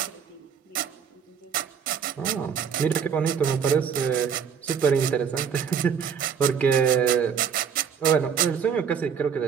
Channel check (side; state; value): left; quieter; 7.2 dB